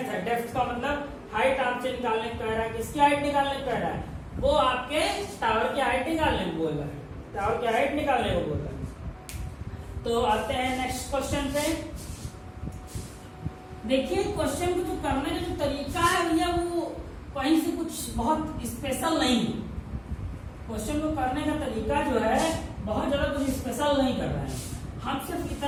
है, डेप्थ का मतलब हाइट आपसे निकालने को कह रहा है, किसकी हाइट निकालने को कह रहा है, वो आपके टावर की हाइट निकालने को बोल रहा है, टावर की हाइट निकालने को बोल रहा है। तो आते हैं नेक्स्ट क्वेश्चन पे। देखिए क्वेश्चन को जो करने का जो तरीका है भैया वो कहीं से कुछ बहुत स्पेशल नहीं है, क्वेश्चन को करने का तरीका जो है बहुत ज्यादा कुछ स्पेशल नहीं कर रहे हैं, हम सिर्फ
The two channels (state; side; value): identical; both; correlation 1.00